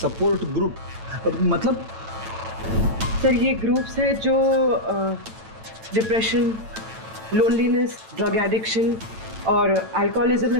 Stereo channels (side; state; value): left; late; 9.0 ms